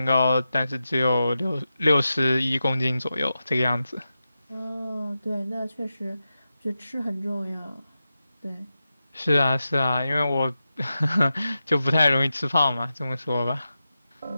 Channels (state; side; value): inverted; both; correlation -0.91